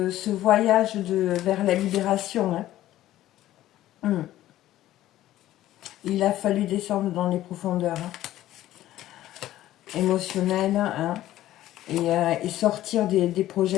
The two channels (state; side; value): quieter; right; 14.1 dB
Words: voyage vers la libération. Hein. Il a fallu descendre dans les profondeurs émotionnelles hein, et sortir des